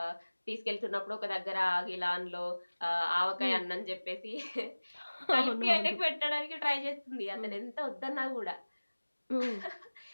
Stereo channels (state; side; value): inverted; both; correlation -1.00